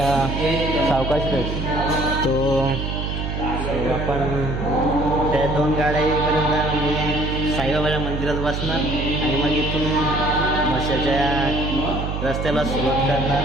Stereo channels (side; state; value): right; noise; hum, 3 dB below the sound